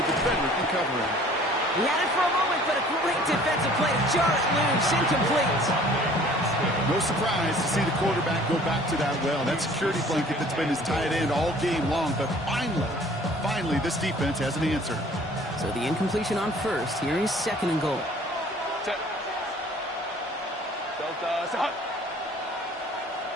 defender can cover him. He had it for a moment, but a great defensive play to jar it loose, incomplete. No surprise to see the quarterback go back to that well. That security blanket that's been his tight end all game long, but finally, this defense has an answer. So the incompletion on first. Here is second and goal.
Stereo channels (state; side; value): normal; both; correlation 0.52